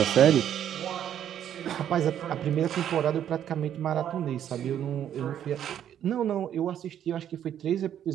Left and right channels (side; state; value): left; quieter; 10.1 dB